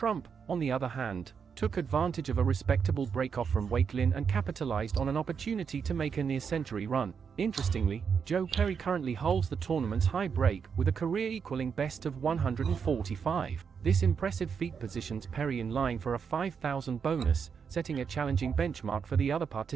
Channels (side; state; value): left; quieter; 6.5 dB